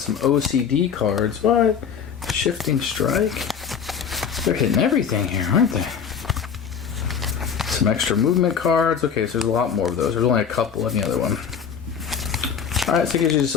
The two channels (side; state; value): right; quieter; 7.1 dB